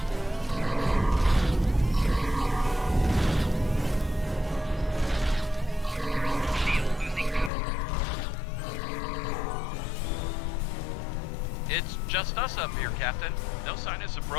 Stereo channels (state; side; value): drops out; right; at 7.5 s